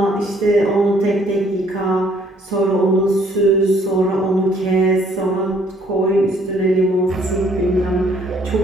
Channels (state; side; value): normal; both; correlation 0.62